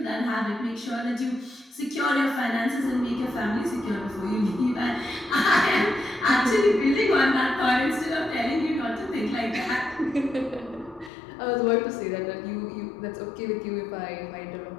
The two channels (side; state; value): right; drops out; at 11.1 s